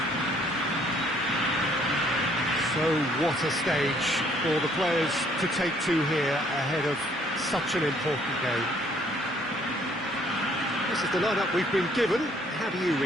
So what a stage for the players to take to here ahead of such an important game. This is the lineup we've been given. How do you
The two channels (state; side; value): normal; both; correlation 0.63